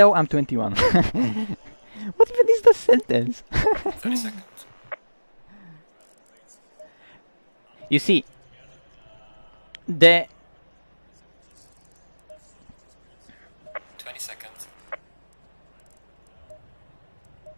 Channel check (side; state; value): both; inverted; correlation -1.00